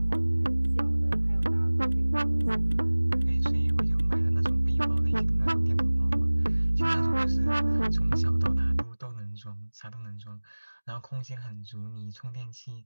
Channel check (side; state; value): both; inverted; correlation -1.00